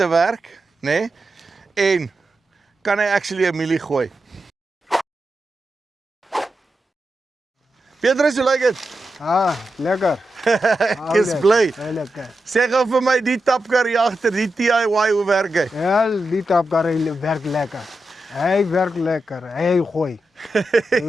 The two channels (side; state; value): both; normal; correlation 0.89